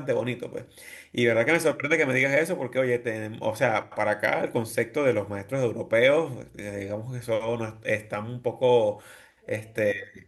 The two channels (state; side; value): identical; both; correlation 1.00